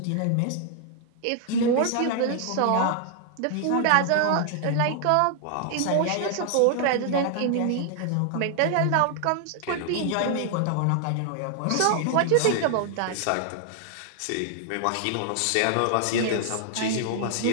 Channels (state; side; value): different; both; correlation 0.00